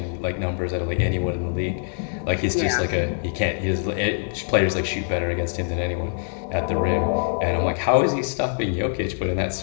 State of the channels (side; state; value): right; silent; digital silence